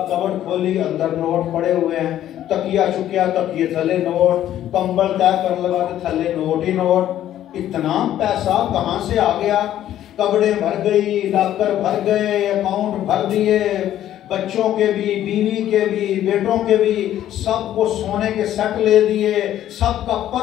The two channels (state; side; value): quieter; right; 12.0 dB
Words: कबड़ खोली, अंदर नोट पड़े हुए हैं, तकिया चुकिया, तकिए थले नोट, कंबल तय कर लगा तो थले नोट ही नोट। इतना पैसा कहां से आ गया? कपड़े भर गई, लॉकर भर गए, अकाउंट भर दिए, बच्चों के भी, बीवी के भी, बेटों के भी, सबको सोने के सेट ले दिए, सबका